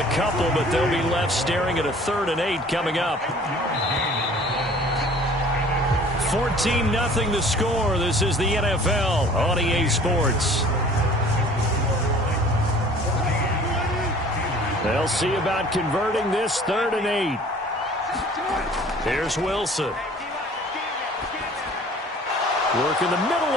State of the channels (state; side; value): normal; both; correlation 0.49